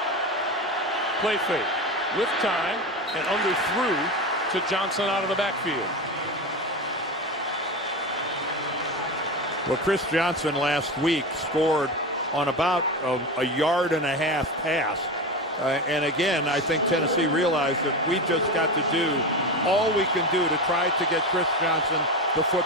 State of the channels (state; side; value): normal; both; correlation 0.22